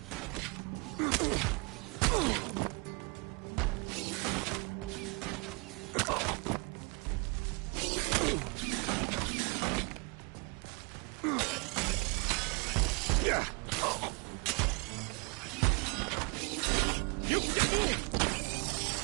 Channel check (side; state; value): left; quieter; 31.3 dB